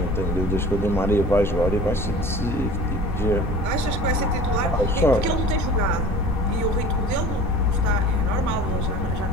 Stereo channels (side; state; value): right; noise; rumble, 7 dB below the sound